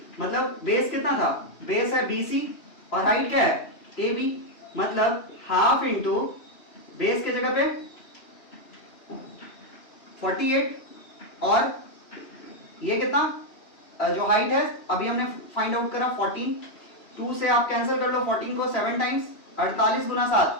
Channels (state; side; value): late; right; 3.0 ms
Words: मतलब बेस कितना था, बेस है BC और हाइट क्या है AB, मतलब हाफ इंटू बेस के जगह पे 48, और ये कितना जो हाइट है अभी हमने फाइंड आउट करा 14, 2 से आप कैंसिल कर लो 14 को 7 टाइम्स, 48 गुना 7,